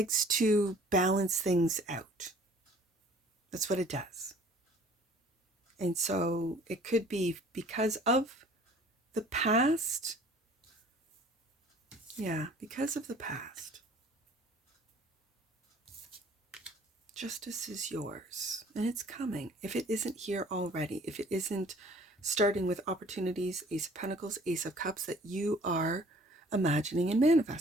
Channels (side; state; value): both; normal; correlation 0.52